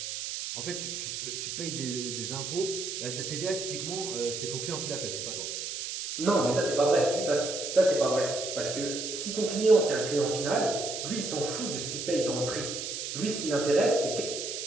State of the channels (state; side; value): noise; right; hiss, 5 dB below the sound